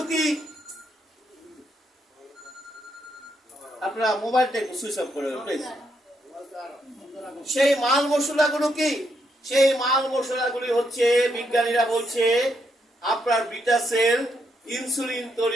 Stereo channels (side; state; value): both; normal; correlation 0.78